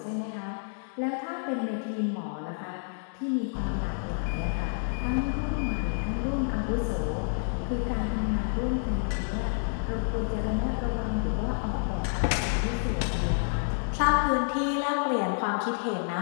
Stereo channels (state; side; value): silent; right; digital silence